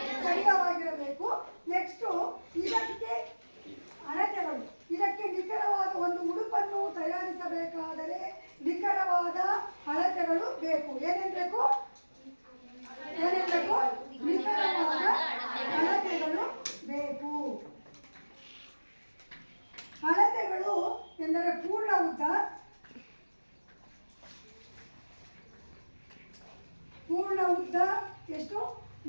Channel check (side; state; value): both; inverted; correlation -1.00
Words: ಸಡಿಲವಾಗಿರಬೇಕು. ನೆಕ್ಸ್ಟು ಇದಕ್ಕೆ ಅಳತೆಗಳು. ಇದಕ್ಕೆ ನಿಖರವಾದ ಒಂದು ಉಡುಪನ್ನು ತಯಾರಿಸಬೇಕಾದರೆ ನಿಖರವಾದ ಅಳತೆಗಳು ಬೇಕು. ಏನೇನು ಬೇಕು? ನಿಖರವಾದ ಅಳತೆಗಳು ಬೇಕು. ಅಳತೆಗಳು ಎಂದರೆ ಪೂರ್ಣ ಉದ್ದ ಎಷ್ಟು?